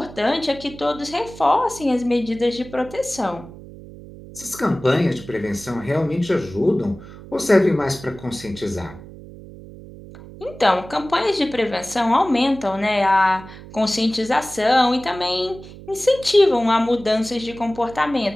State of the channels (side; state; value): right; noise; hum, 17 dB below the sound